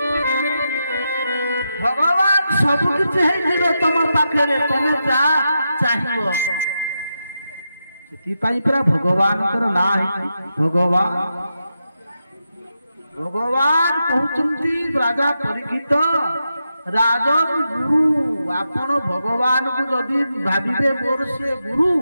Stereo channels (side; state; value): both; inverted; correlation -0.87